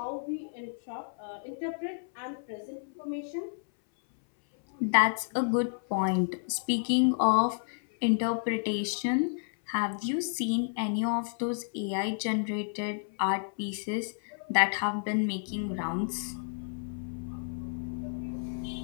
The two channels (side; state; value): right; silent; 57 dB below the other